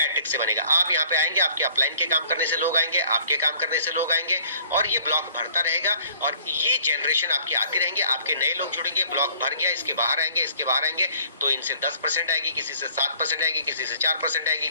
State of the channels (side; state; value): both; inverted; correlation -0.56